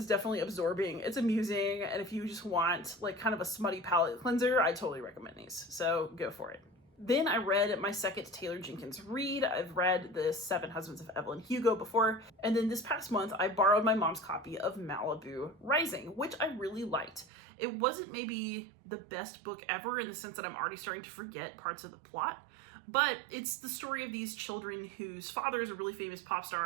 definitely absorbing. It's amusing, and if you just want kind of a smutty palate cleanser, I totally recommend these. So go for it. Then I read my second Taylor Jenkins read. I've read The 7 Husbands of Evelyn Hugo before, and then this past month I borrowed my mom's copy of Malibu Rising, which I really liked. It wasn't maybe the best book ever in the sense that I'm already starting to forget parts of the plot, but it's the story of these children whose father is a really famous pop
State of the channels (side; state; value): left; drops out; at 17.2 s